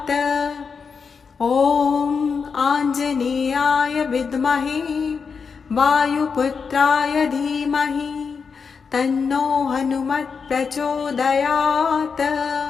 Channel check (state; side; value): quieter; right; 5.6 dB